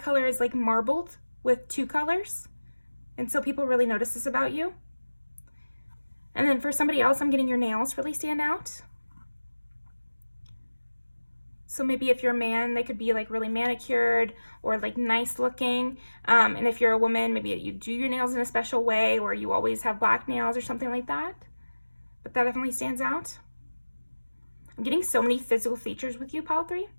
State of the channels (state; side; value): inverted; both; correlation -1.00